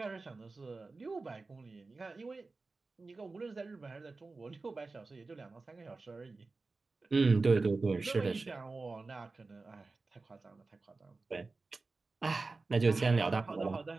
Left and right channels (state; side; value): quieter; left; 3.7 dB